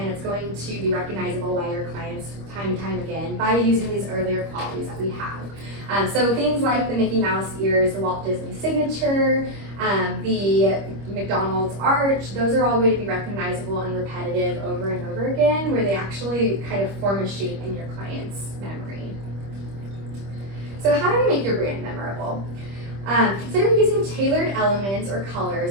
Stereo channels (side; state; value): left; late; 25 ms